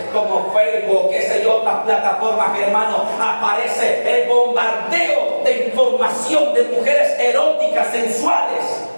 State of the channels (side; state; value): both; inverted; correlation -1.00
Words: como Facebook, qué sé yo, otras plataformas, hermano, aparece el bombardeo de información de mujeres eróticas, sensuales.